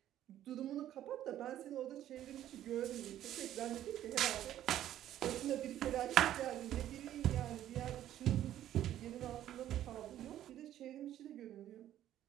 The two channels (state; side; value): quieter; left; 12.1 dB